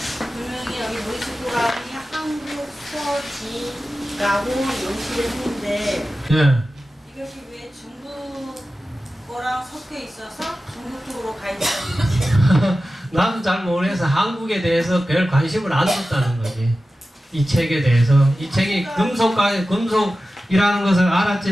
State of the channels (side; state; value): both; normal; correlation 0.94